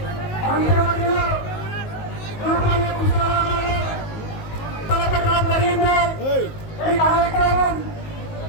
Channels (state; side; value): late; right; 19 ms